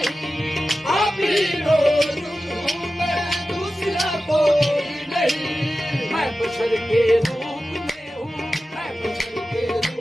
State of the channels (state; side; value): normal; both; correlation 0.94